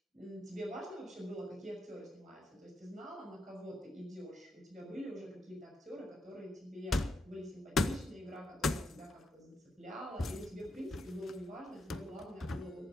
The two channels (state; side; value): normal; both; correlation 0.82